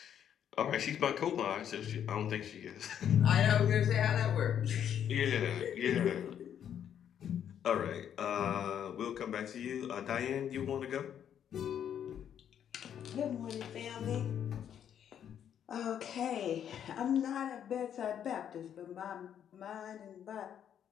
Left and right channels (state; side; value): quieter; right; 9.3 dB